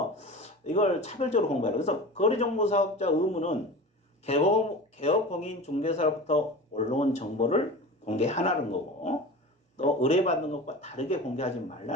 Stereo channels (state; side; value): normal; both; correlation 0.33